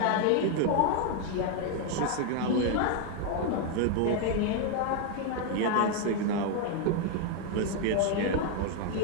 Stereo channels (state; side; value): different; both; correlation 0.00